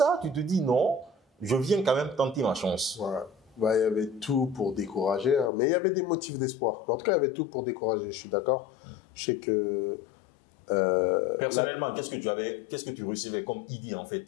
tu te dis non, je viens quand même tenter ma chance. Voilà. Bah, il y avait tout pour décourager, hein, mais il y avait des motifs d'espoir. En tout cas, il y avait tout pour décourager, je suis d'accord. Je sais que... Personnellement, qu'est-ce que tu recevais comme idée en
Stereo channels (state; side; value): drops out; right; at 5.5 s